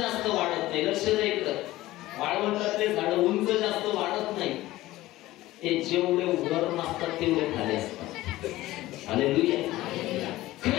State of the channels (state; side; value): quieter; right; 16.9 dB